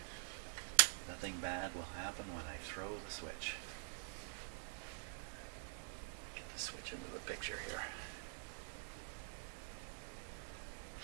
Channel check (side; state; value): left; silent; digital silence